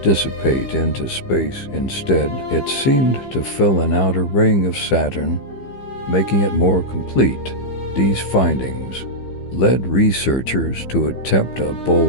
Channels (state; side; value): late; right; 15 ms